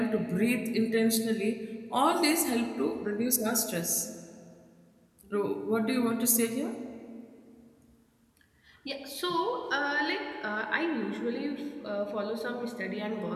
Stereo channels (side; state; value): both; identical; correlation 1.00